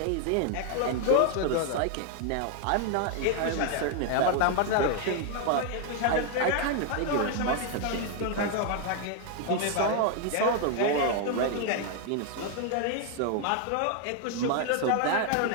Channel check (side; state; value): both; different; correlation 0.00